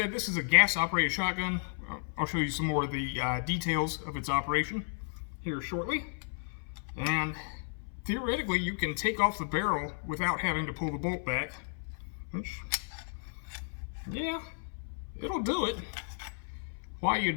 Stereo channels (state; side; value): silent; right; 56 dB below the other